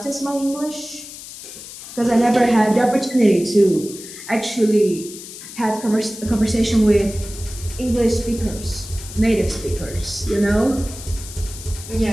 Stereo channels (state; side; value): noise; left; hiss, 13 dB below the sound